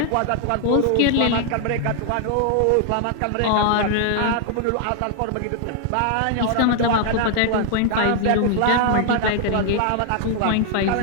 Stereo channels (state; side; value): different; both; correlation 0.00